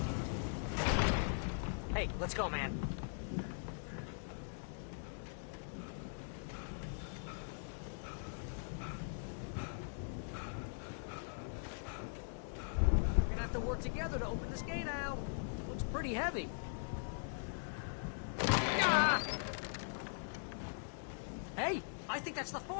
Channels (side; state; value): right; silent; digital silence